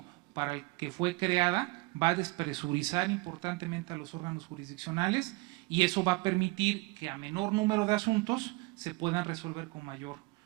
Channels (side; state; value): left; quieter; 24.4 dB